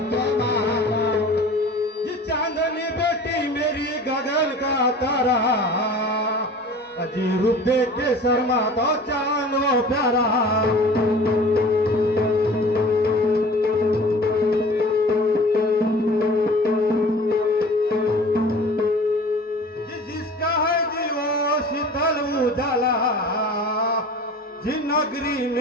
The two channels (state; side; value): normal; both; correlation 0.42